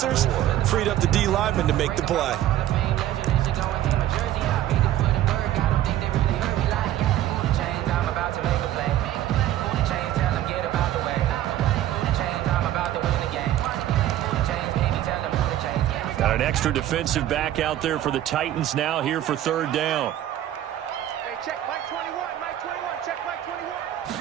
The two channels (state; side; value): quieter; left; 12.8 dB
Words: freed up the D lineman to make the play. Got an extra defensive back out there for the Titans now here for 3rd down. Hey, check Mike 21, Mike 21, check Mike